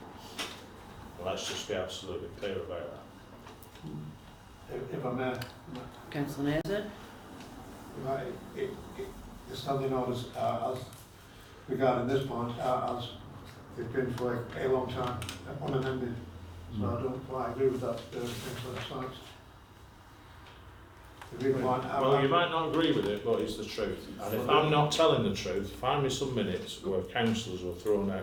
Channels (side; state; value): both; identical; correlation 1.00